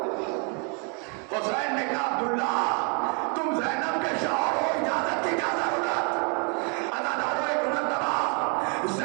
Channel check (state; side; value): quieter; left; 35.7 dB